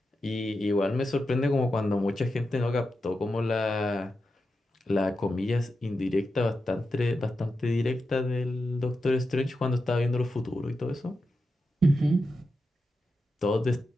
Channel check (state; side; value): normal; both; correlation 0.89